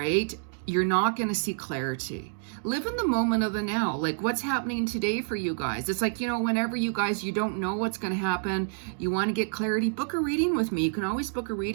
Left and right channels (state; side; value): silent; left; digital silence